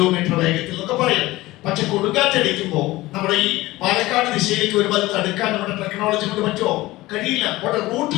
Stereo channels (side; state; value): right; quieter; 18.5 dB